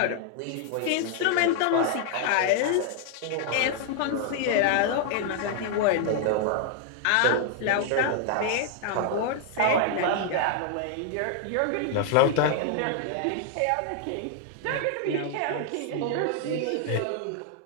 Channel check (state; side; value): different; both; correlation 0.00